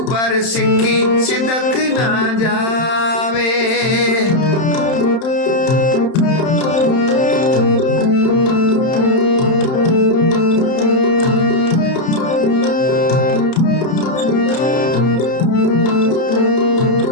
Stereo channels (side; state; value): right; late; 31 ms